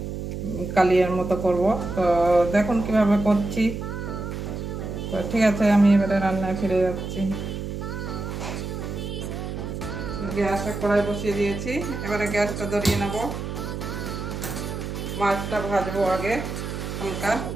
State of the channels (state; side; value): noise; right; hum, 6 dB below the sound